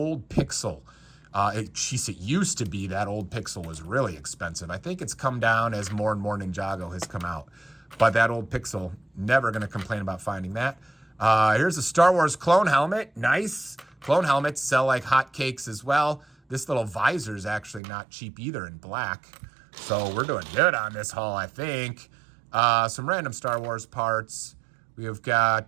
Pixel. It used to be that old Pixel was really expensive. I think it's come down as more and more Ninjago has come out. But that old Pixel, never going to complain about finding that. Here's a Star Wars clone helmet. Nice. Clone helmets sell like hotcakes as well. This little visor is actually not cheap either in black. So we're doing good on this haul, I think. Some random Star Wars parts. We have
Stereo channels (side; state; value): left; drops out; at 17.8 s